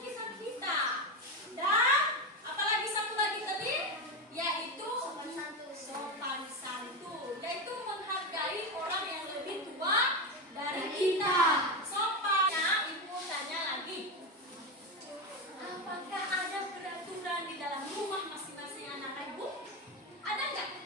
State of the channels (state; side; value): normal; both; correlation 0.14